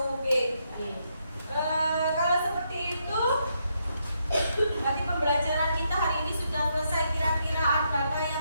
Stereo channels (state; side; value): inverted; both; correlation -0.78